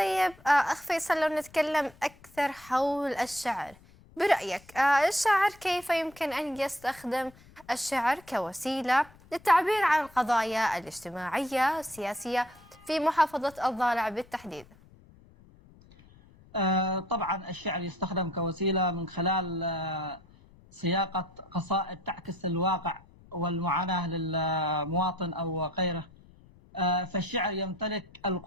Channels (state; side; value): noise; left; rumble, 25 dB below the sound